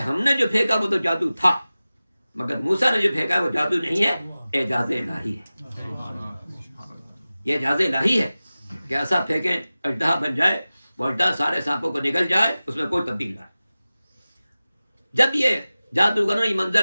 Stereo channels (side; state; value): both; inverted; correlation -0.97